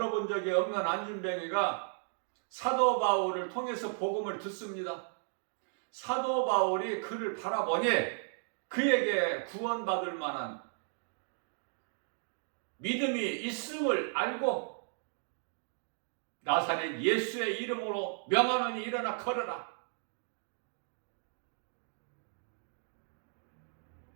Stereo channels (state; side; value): silent; left; digital silence